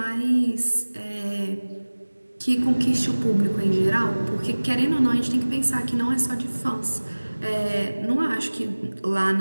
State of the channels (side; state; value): both; inverted; correlation -1.00